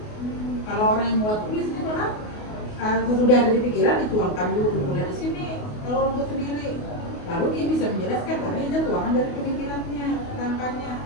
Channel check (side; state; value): right; late; 28 ms